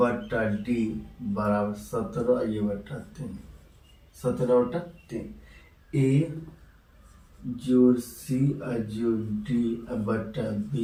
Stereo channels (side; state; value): both; identical; correlation 1.00